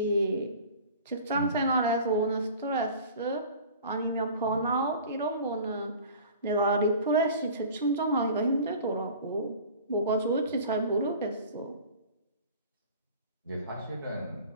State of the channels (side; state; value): both; inverted; correlation -0.42